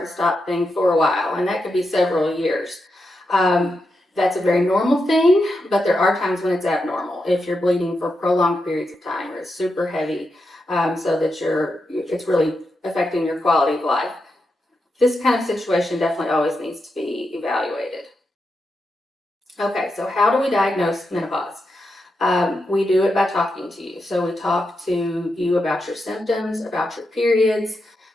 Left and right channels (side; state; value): both; normal; correlation 0.86